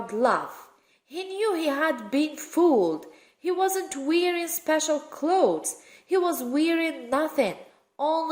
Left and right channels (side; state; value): both; identical; correlation 1.00